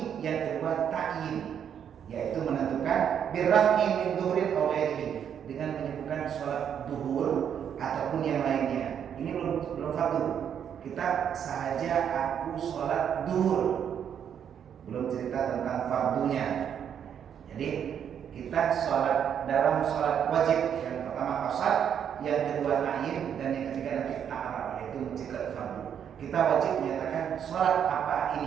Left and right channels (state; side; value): quieter; left; 8.5 dB